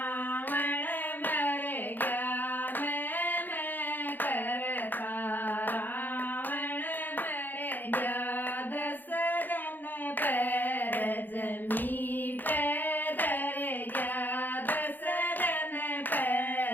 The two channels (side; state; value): right; late; 0.088 ms